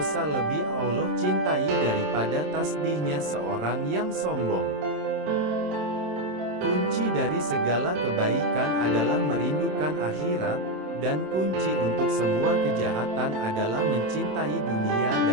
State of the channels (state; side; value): late; left; 27 ms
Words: lebih Allah cintai daripada tasbihnya seorang yang sombong. Kunci dari segala kebaikan adalah merindukan akhirat, dan kunci untuk semua kejahatan adalah mencintai dunia